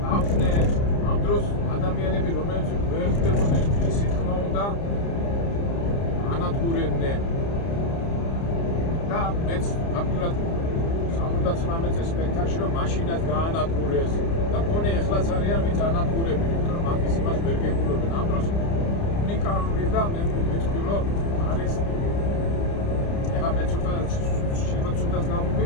ამ დროს ადამიანები რომელიც ვერ ხდებოდნენ ისი თქმა უნდა ანადგურებდნენ. და მეც ფაქტურად 79 წელს სპექტაკლში რომ მაშინაც გაანადგურეს და მგონი ეხლაც არიან ვინც ანადგურებენ, იმიტომ რომ მაგის იმას ვერ გებულობენ. ამ დროს უნიკალური და მე ვიტყვი რომ არის ეხლა მე ცუდად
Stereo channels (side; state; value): right; late; 30 ms